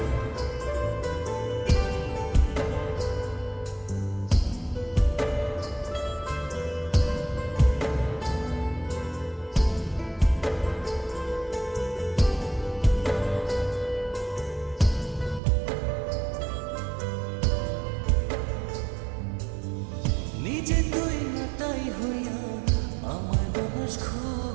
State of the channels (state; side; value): drops out; left; at 15.4 s